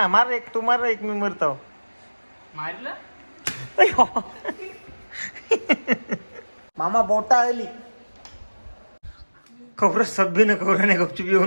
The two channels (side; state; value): both; inverted; correlation -1.00